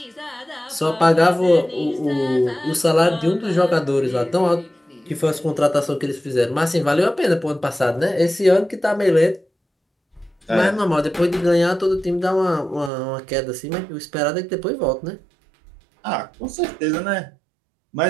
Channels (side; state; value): left; drops out; at 12.9 s